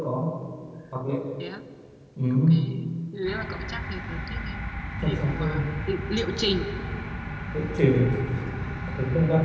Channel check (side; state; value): both; identical; correlation 1.00